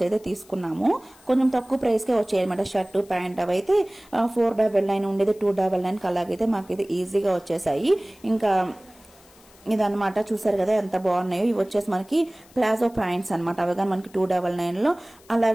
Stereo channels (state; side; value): noise; left; hiss, 27 dB below the sound